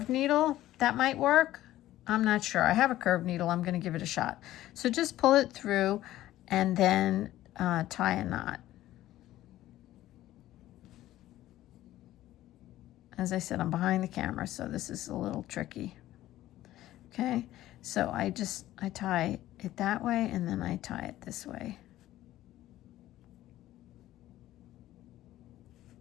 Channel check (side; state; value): right; quieter; 14.6 dB